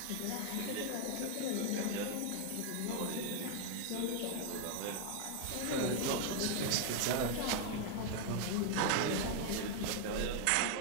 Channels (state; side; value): different; both; correlation 0.00